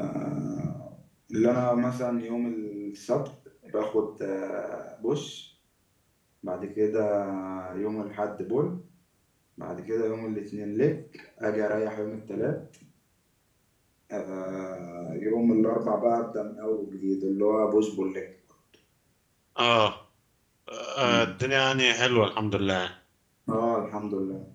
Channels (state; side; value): identical; both; correlation 1.00